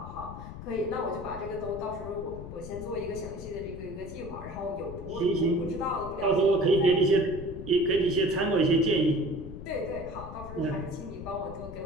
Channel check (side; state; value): left; noise; rumble, 11 dB below the sound